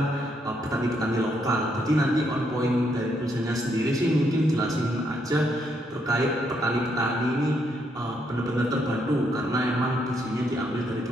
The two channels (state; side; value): normal; both; correlation 0.75